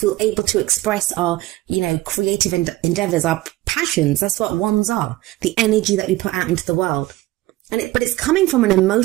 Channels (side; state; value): left; quieter; 17.8 dB